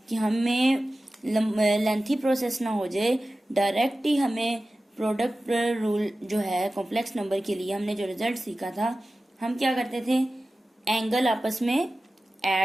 कि हमें लेंथी प्रोसेस ना हो जाए, डायरेक्ट ही हमें प्रोडक्ट रूल जो है कॉम्प्लेक्स नंबर के लिए हमने जो रिजल्ट सीखा था, हम क्या करते थे, एंगल आपस में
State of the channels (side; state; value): both; normal; correlation 0.95